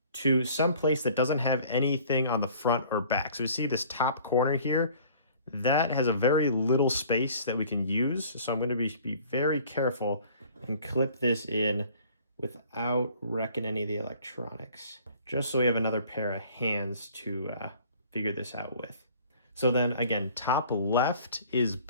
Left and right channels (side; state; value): both; inverted; correlation -0.51